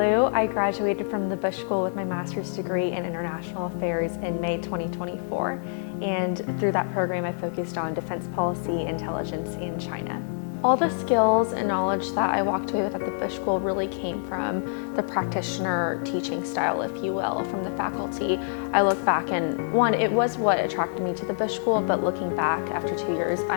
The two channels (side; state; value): right; silent; 61 dB below the other